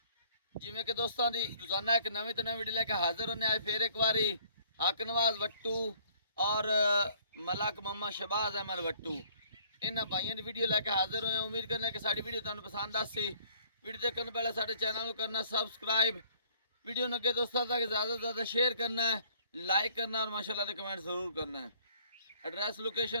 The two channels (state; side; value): inverted; both; correlation -0.59